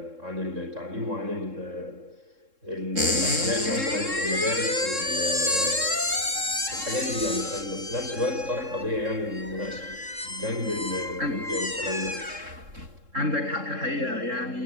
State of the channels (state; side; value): late; left; 3.7 ms